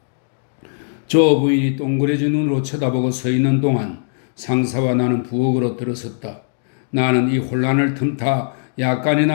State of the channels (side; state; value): right; silent; digital silence